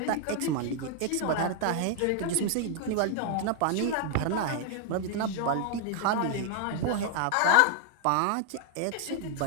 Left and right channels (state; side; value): different; both; correlation 0.00